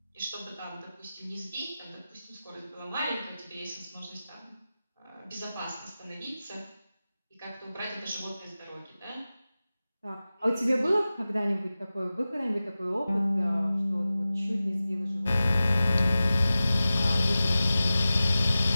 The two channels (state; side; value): inverted; both; correlation -0.95